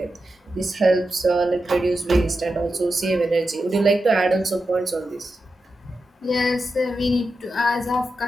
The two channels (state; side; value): normal; both; correlation 0.89